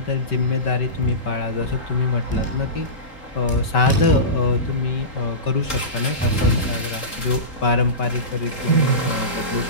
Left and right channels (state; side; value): late; right; 3.8 ms